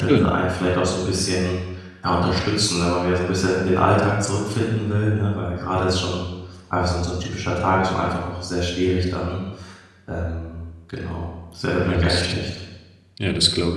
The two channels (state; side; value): identical; both; correlation 1.00